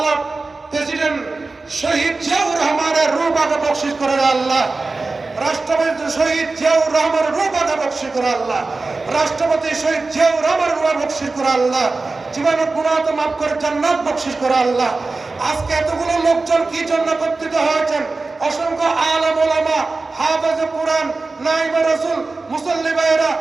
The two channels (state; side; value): quieter; left; 3.6 dB